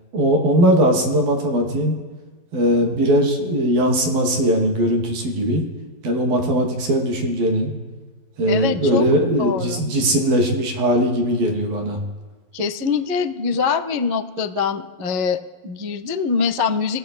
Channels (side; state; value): left; late; 12 ms